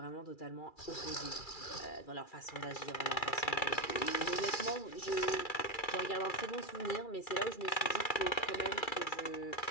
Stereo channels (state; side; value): late; right; 2.3 ms